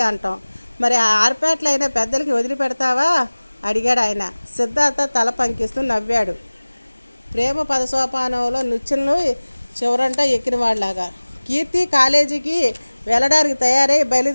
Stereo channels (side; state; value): both; inverted; correlation -1.00